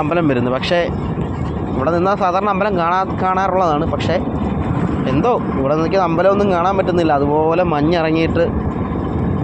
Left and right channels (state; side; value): identical; both; correlation 1.00